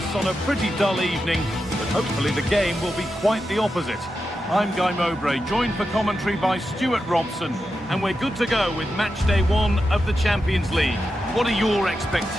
on a pretty dull evening, but hopefully the game will be quite the opposite. I'm Guy Mowbray, joined for commentary by Stuart Robson, and we're good to go with match day 1 of the Champions League. What are your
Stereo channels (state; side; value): normal; both; correlation 0.89